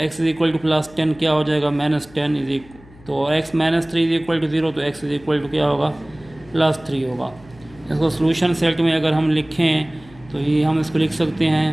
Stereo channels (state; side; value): noise; left; hum, 24 dB below the sound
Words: is equal to plus 10 क्या हो जाएगा -10 इज तो x -3 इज इक्वल टू 0 तो x इज इक्वल टू क्या होगा +3 होगा। इसको सोल्यूशन सेट में अगर हम लिखें तो ये हम इसको लिख सकते हैं